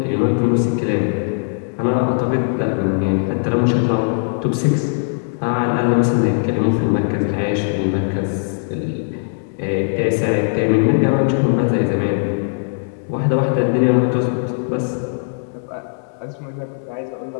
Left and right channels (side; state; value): right; silent; digital silence